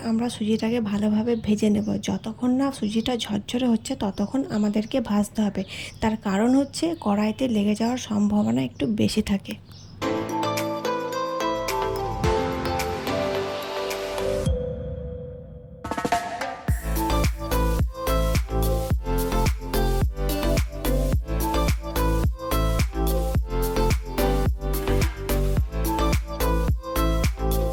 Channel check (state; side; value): identical; both; correlation 1.00